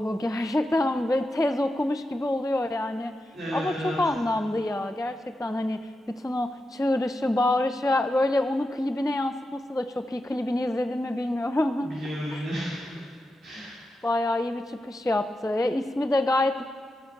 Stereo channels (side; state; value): both; normal; correlation 0.89